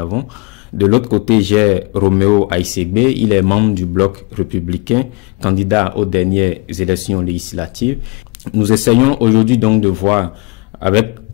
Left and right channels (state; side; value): quieter; right; 27.1 dB